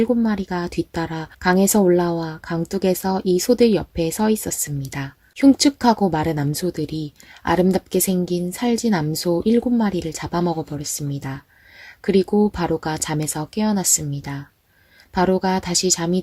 뒤따라 강에서 올라와 강둑에서 이 소들 옆에 서 있었습니다. 흉측하고 마른 암소들이 아름답게 생긴 살진 암소 7마리를 잡아먹어 버렸습니다. 그리고 바로가 잠에서 깨어났습니다. 바로가 다시 잠이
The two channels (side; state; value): both; identical; correlation 1.00